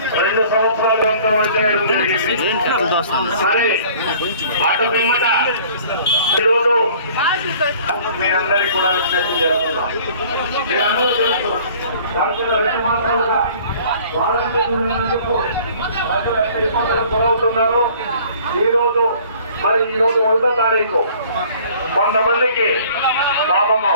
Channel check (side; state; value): both; inverted; correlation -0.51